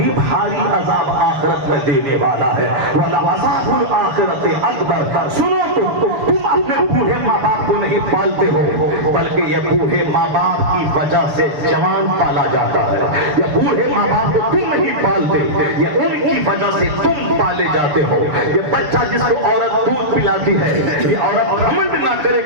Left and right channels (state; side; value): late; left; 6.8 ms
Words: بھاری عذاب آخرت میں دینے والا ہے۔ وَلَعَذَابُ الْآخِرَةِ أَكْبَرُ، سنو تم اپنے بوڑھے ماں باپ کو نہیں پالتے ہو، بلکہ یہ بوڑھے ماں باپ کی وجہ سے جوان پالا جاتا ہے۔ یہ بوڑھے ماں باپ کو تم نہیں پالتے، یہ ان کی وجہ سے تم پالے جاتے ہو۔ یہ بچہ جس کو عورت دودھ پلاتی ہے، یہ عورت گھمنڈ نہ کرے